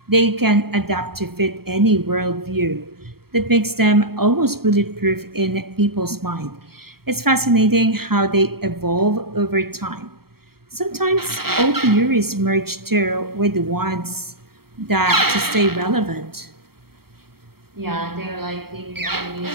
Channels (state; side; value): late; left; 0.95 ms